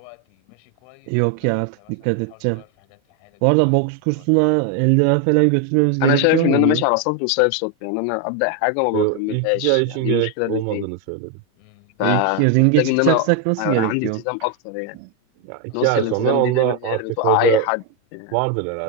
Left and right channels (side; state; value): both; different; correlation 0.02